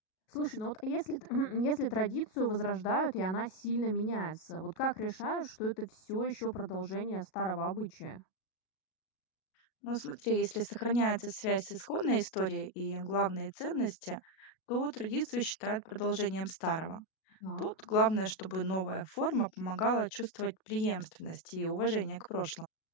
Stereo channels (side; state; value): right; late; 37 ms